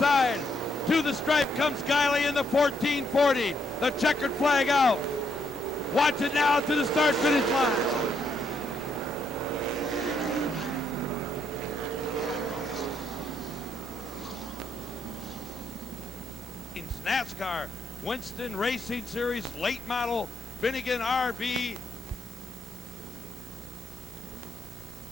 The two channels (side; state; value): both; normal; correlation 0.75